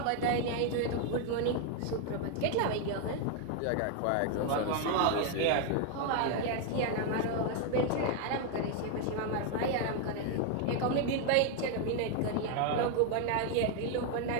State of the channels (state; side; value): different; both; correlation 0.01